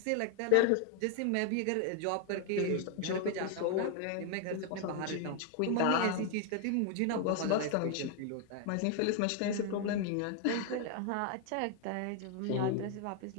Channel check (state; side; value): different; both; correlation 0.00